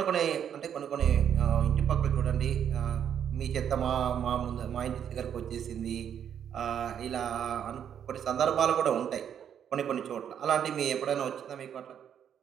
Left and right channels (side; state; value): left; quieter; 8.8 dB